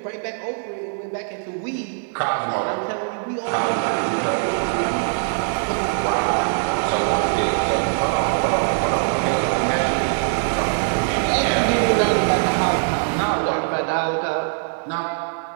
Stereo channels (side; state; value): left; silent; digital silence